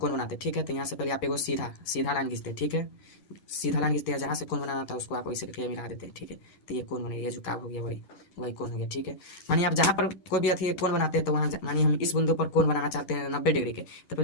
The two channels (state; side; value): late; right; 11 ms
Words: बनाते हैं, ठीक है, तो यहाँ से पहले आप एगो सीधा सीधा लाइन खींचते हैं, ठीक है, सीधा लाइन खींचते हैं, जहाँ से कोण बनाना था उसको आप वैसे करके मिला देते हैं, ठीक है, तो ये कोण बनेगा, ये झुकाव हो गया, वही वही कोण हो गया, ठीक है। मानिए आप जहाँ पर कोई भी अथी कोण बनाते हैं तो वहाँ मानिए हम इस बिंदु पर कोण बनाना चाहते हैं 90 डिग्री के, तो